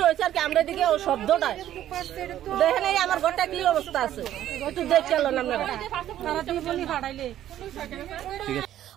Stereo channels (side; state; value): left; quieter; 12.1 dB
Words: হইছে আর কি আমরা এদিকে ও শব্দটা দেখেন এই আমার ঘরটা কি অবস্থা আছে একটু দেখলেন আপনারা তারা টিপনি ফাটাইলে